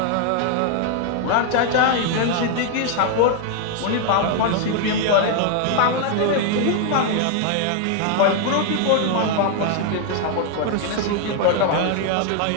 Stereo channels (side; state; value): both; different; correlation 0.00